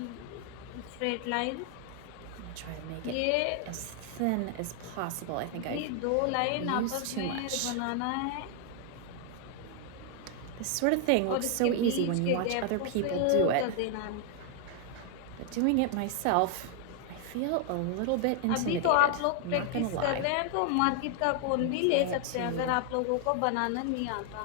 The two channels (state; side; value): different; both; correlation 0.00